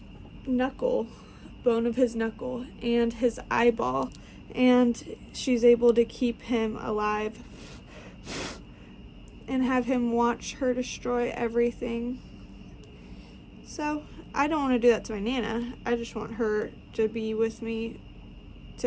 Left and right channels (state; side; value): identical; both; correlation 1.00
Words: knuckle, bone of his knuckle, and his eyeball, and she's able to keep him alive and have him watch her destroy everything. So I don't want to do that to my Nana. I just want her to be with me